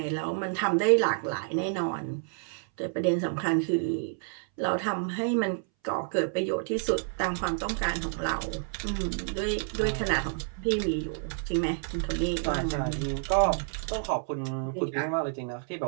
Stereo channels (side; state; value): left; silent; 58 dB below the other